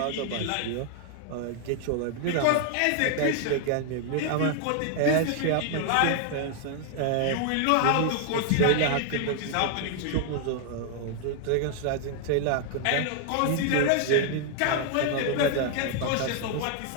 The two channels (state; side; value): different; both; correlation 0.00